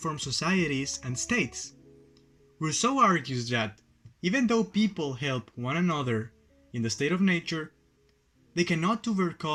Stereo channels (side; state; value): both; identical; correlation 1.00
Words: societies and states? Rousseau argues that even though people help one another in the state of nature, they cannot